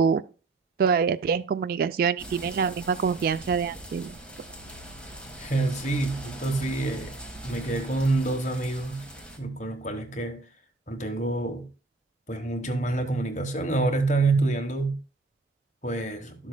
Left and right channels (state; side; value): quieter; left; 3.6 dB